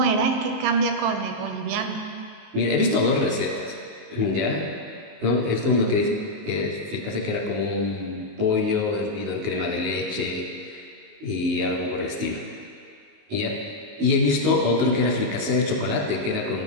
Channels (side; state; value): left; late; 19 ms